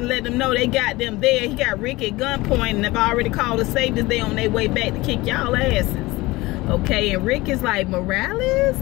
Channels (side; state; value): right; quieter; 20.6 dB